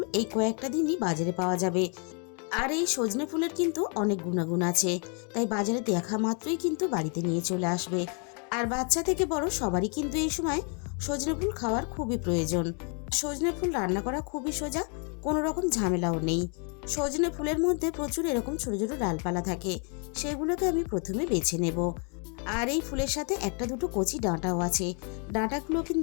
এই কয়েকটা দিনই বাজারে পাওয়া যাবে। আর এই সজনে ফুলের কিন্তু অনেক গুণাগুণ আছে, তাই বাজারে দেখা মাত্রই কিন্তু বাড়িতে নিয়ে চলে আসবে। আর বাচ্চা থেকে বড় সবারই কিন্তু এই সময় সজনে ফুল খাওয়ার খুবই প্রয়োজন। সজনে ফুল রান্না করা খুবই সোজা, কোনো রকম ঝামেলাও নেই। সজনে ফুলের মধ্যে প্রচুর এরকম ছোট ছোট ডালপালা থাকে, সেগুলোকে আমি প্রথমে বেছে নেব। আর এই ফুলের সাথে একটা দুটো কচি ডাঁটাও আছে, ডাঁটাগুলো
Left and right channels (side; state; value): right; quieter; 38.0 dB